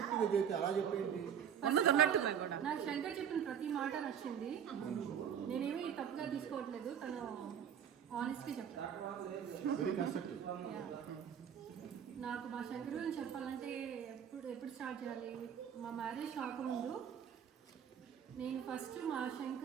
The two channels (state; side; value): quieter; left; 8.5 dB